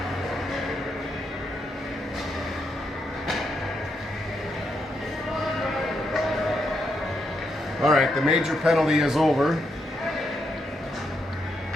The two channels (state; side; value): normal; both; correlation 0.80